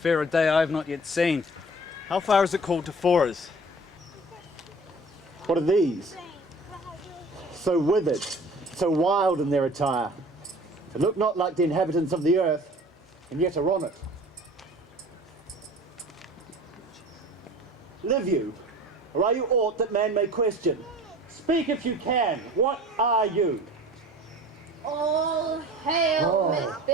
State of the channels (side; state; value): both; normal; correlation 0.45